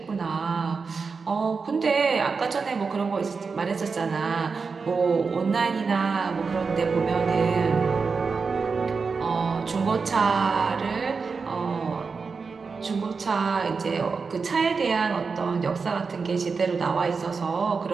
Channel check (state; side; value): quieter; left; 4.9 dB